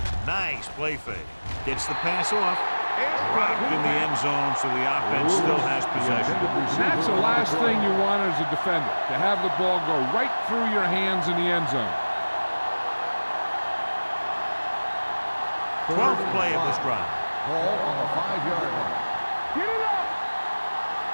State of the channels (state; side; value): inverted; both; correlation -1.00